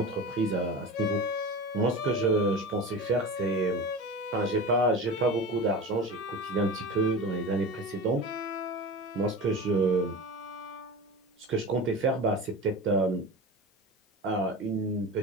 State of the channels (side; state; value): both; normal; correlation 0.31